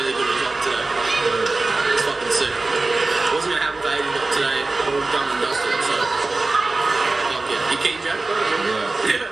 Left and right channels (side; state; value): left; quieter; 3.4 dB